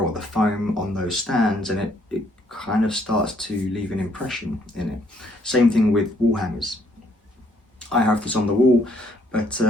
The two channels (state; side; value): normal; both; correlation 0.67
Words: the foam on those stands, and it kind of starts to leave an impression in it. Same thing with wall hangers. I have this on the wall, but